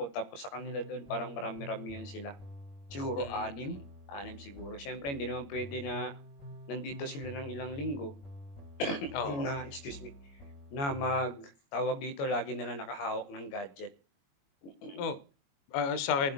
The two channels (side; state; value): right; late; 21 ms